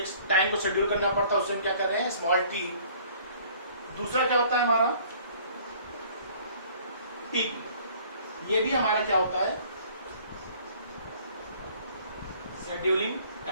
टाइम को शेड्यूल करना पड़ता है, उससे हम क्या कर रहे हैं, स्मॉल टी। दूसरा क्या होता है हमारा टीपी, ये भी हमारा क्या होता है, शेड्यूलिंग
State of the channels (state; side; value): inverted; both; correlation -0.55